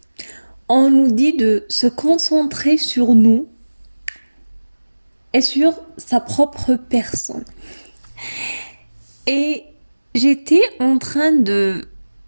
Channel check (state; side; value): inverted; both; correlation -1.00